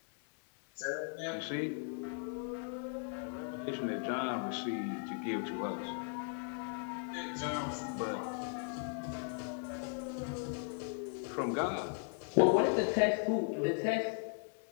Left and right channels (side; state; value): right; silent; 53 dB below the other